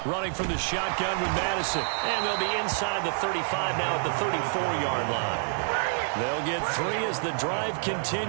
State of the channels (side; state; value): left; silent; 57 dB below the other